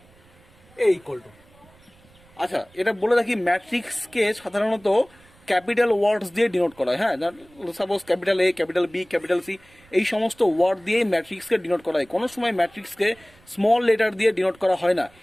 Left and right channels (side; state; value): right; noise; rumble, 28 dB below the sound